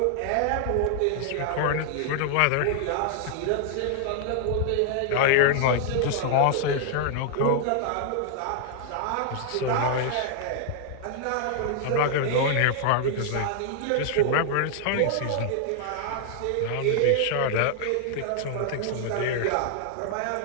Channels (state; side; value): different; both; correlation -0.01